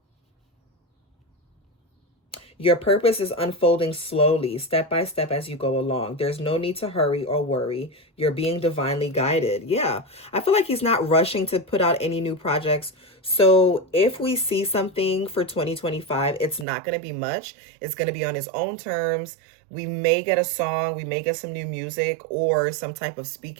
Your purpose is unfolding slowly, step by step as you go along. There's no need to hurry or worry. You're being divinely guided. Yeah, I feel like he's not rushing to put out any new projects. So if we see something for 2025, it's not going to be much. It's going to be on his own terms. We may get a song, we may get some new music or some type of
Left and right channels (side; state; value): left; drops out; at 16.7 s